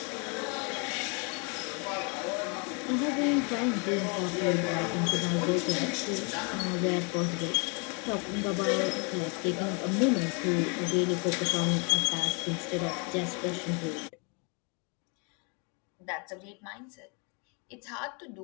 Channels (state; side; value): quieter; right; 33.9 dB